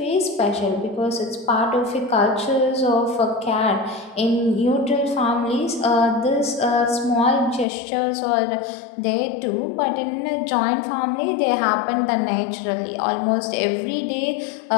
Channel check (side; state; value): right; drops out; at 7.7 s